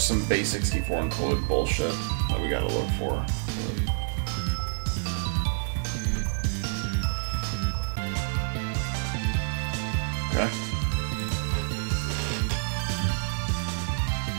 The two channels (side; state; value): left; silent; digital silence